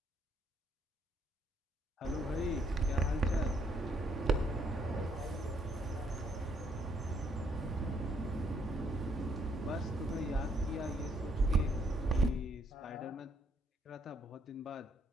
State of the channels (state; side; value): normal; both; correlation 0.70